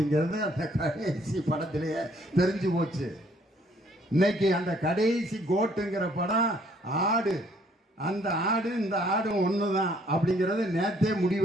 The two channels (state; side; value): normal; both; correlation 0.63